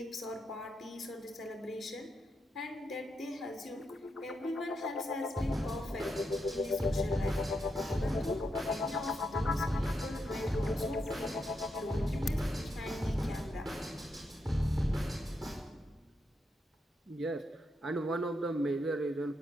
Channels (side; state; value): both; normal; correlation 0.83